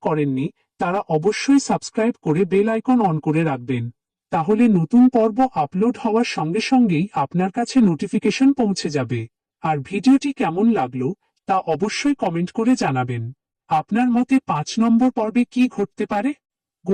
করেননি তারা অবশ্যই সাবস্ক্রাইব করে বেল আইকন অন করে রাখবেন, তাহলে নতুন পর্ব আপলোড হওয়ার সঙ্গে সঙ্গেই আপনার কাছে নোটিফিকেশন পৌঁছে যাবে। আর ভিডিওটি কেমন লাগলো তা অবশ্যই কমেন্ট করে জানাবেন। আপনার মতে 5 নম্বর পর্বে কি ঘটতে পারে?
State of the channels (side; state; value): both; identical; correlation 1.00